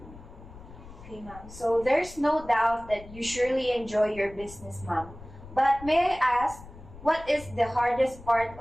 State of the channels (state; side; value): noise; left; rumble, 17 dB below the sound